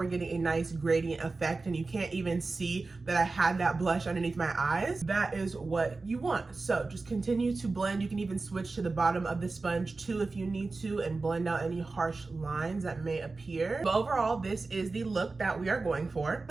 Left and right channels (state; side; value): quieter; left; 3.7 dB